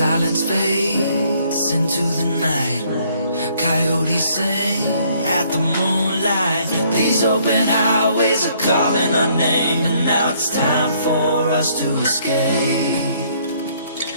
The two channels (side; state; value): both; inverted; correlation -0.65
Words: fades into the night. Coyotes sing at the moonlight. These open highways are calling our name, and now it's time for us to escape.